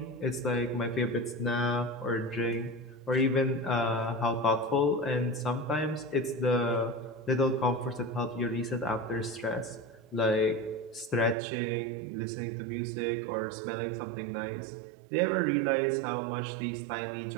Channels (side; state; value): left; drops out; at 11.4 s